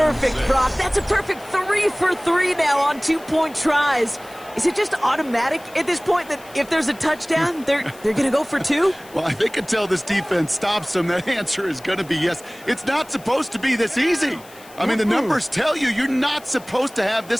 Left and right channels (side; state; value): left; noise; hiss, 22 dB below the sound